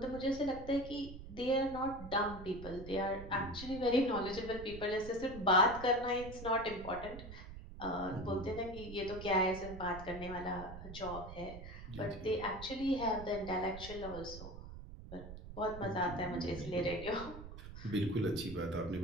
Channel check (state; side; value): noise; right; rumble, 12 dB below the sound